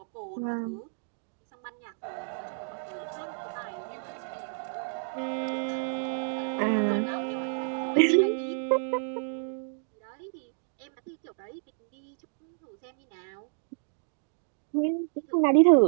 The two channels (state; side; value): silent; left; digital silence